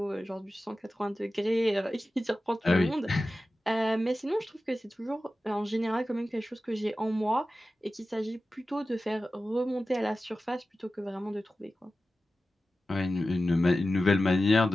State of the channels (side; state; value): both; normal; correlation 0.94